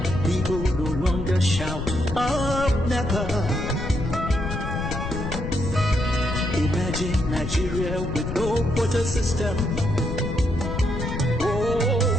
People no longer shout up never. Imagine Nigeria with no quota system. Oh,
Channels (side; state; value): left; noise; rumble, 5 dB below the sound